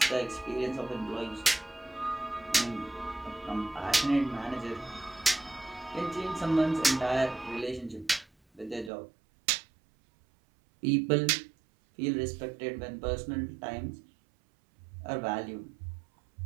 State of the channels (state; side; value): drops out; left; at 8.9 s